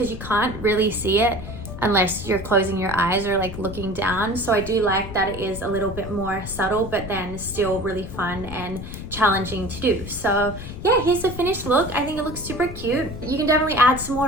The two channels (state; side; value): noise; left; rumble, 10 dB below the sound